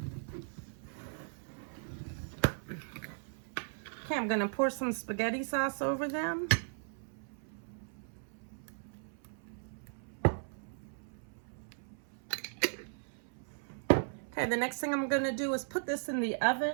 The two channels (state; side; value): silent; left; 53 dB below the other